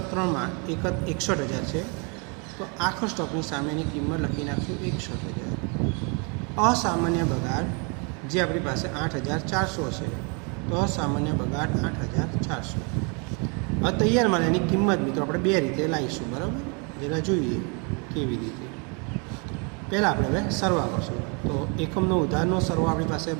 3માં 61,000 છે તો આખર સ્ટોકની સામેની કિંમત લખી નાખશું 61,000. અસામાન્ય બગાડ જે આપણી પાસે 8,400 છે તો અસામાન્ય બગાડ 8,400. હવે તૈયાર માલ એની કિંમત મિત્રો આપણે બે રીતે લાવીશું, બરાબર. જરા જોઈએ કેવી રીતે. પહેલાં આપણે હવે સરવા કરશું. તો એકમનો ઉધારનો સરવા આપણી પાસે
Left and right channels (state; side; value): quieter; left; 34.2 dB